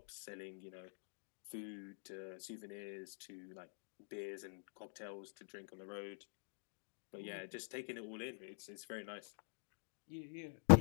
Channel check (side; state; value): right; silent; digital silence